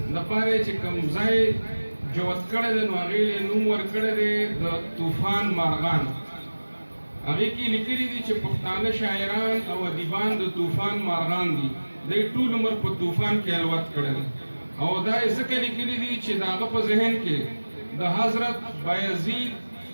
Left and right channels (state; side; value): inverted; both; correlation -1.00